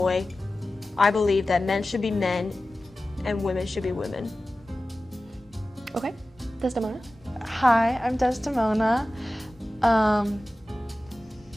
I believe that men should be men and women should be women. Okay, Desdemona? Hi, I'm Desdemona.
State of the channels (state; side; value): normal; both; correlation 0.96